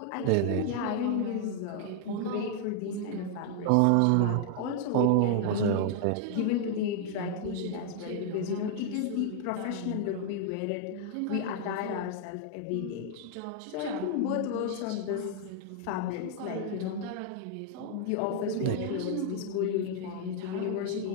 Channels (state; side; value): different; both; correlation 0.00